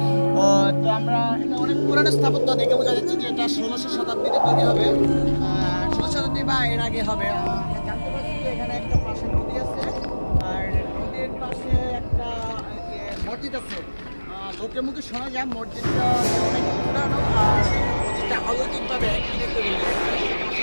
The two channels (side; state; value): both; inverted; correlation -1.00